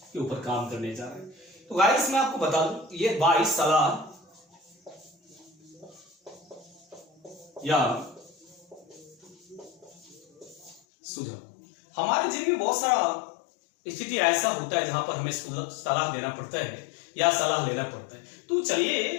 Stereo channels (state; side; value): drops out; right; at 10.8 s